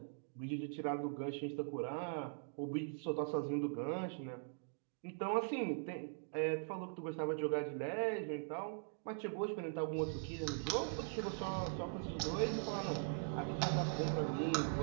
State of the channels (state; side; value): silent; left; digital silence